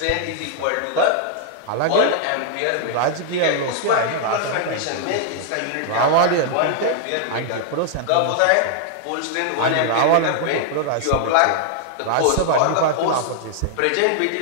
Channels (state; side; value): different; both; correlation -0.01